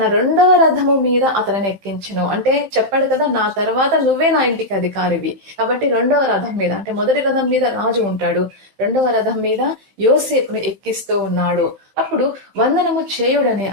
2వ రథము మీద అతనిని ఎక్కించెను. అంటే చెప్పాడు కదా, నా తర్వాత నువ్వే నా ఇంటికి అధికారివి. కాబట్టి 2వ రథం మీద, అంటే మొదటి రథం మీద రాజు ఉంటాడు, 2వ రథం మీద యోసేపును ఎక్కిస్తూ ఉన్నాడు. అప్పుడు వందనము చేయుడని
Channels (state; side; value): late; left; 15 ms